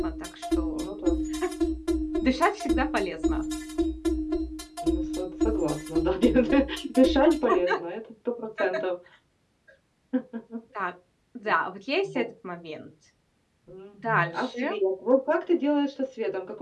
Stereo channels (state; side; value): identical; both; correlation 1.00